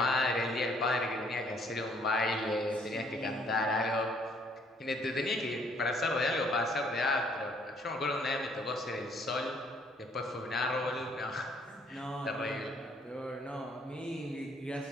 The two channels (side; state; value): both; normal; correlation 0.64